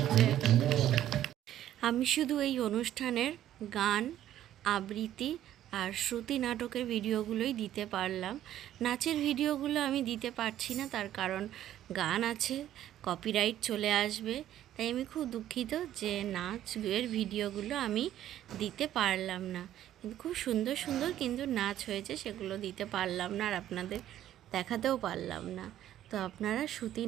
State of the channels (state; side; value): quieter; left; 12.1 dB